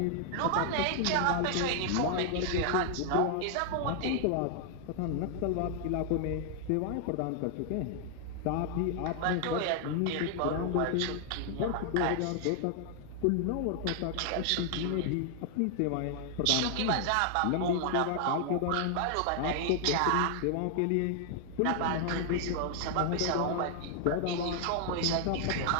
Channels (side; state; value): both; different; correlation 0.00